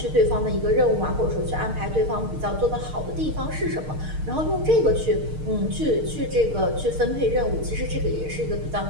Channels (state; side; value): late; left; 6.5 ms